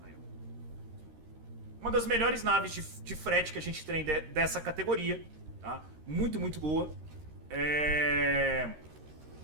Uma das melhores naves de frete que a gente tem dessa categoria. Tá? Muito, muito boa.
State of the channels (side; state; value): left; late; 13 ms